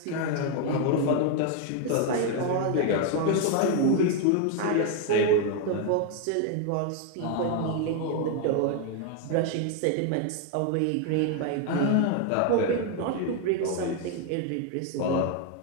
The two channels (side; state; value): both; different; correlation 0.01